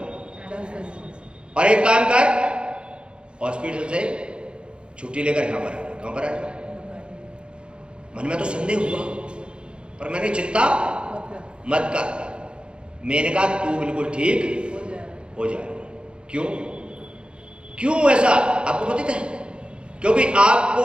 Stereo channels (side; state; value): left; late; 0.055 ms